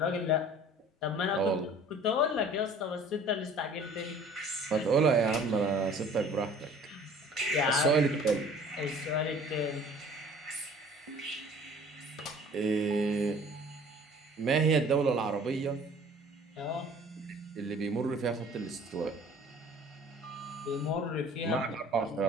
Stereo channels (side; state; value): both; normal; correlation 0.50